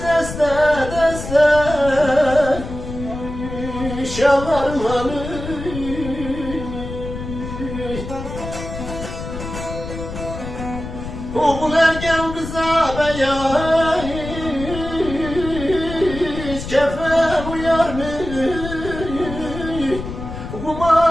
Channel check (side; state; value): left; noise; rumble, 8 dB below the sound